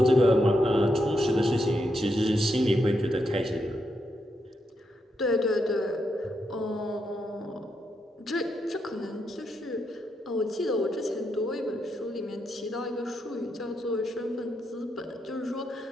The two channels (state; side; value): normal; both; correlation 0.82